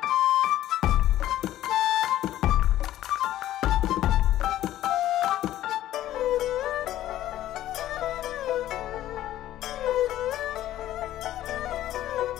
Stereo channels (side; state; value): right; quieter; 13.4 dB